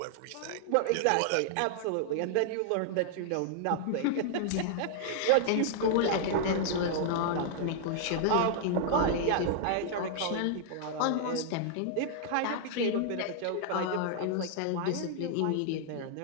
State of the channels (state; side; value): different; both; correlation -0.01